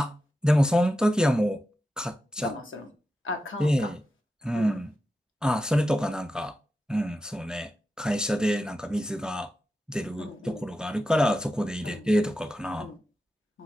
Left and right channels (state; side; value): normal; both; correlation 0.91